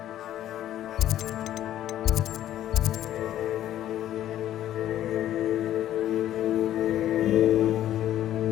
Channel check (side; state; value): right; quieter; 12.3 dB